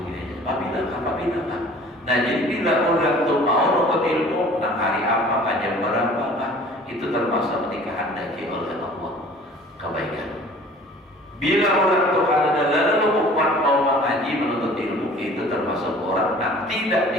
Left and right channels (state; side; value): normal; both; correlation 0.48